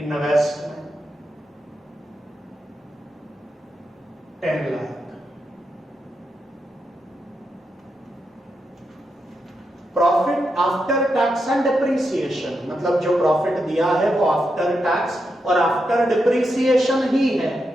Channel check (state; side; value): normal; both; correlation 0.85